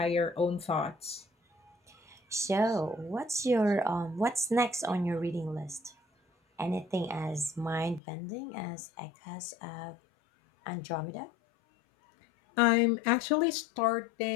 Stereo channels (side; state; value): right; drops out; at 8.0 s